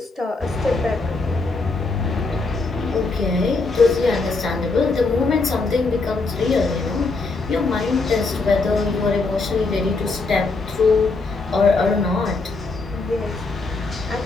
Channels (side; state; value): right; quieter; 3.7 dB